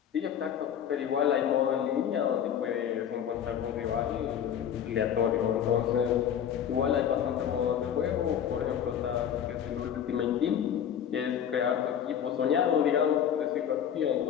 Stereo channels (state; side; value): quieter; right; 9.1 dB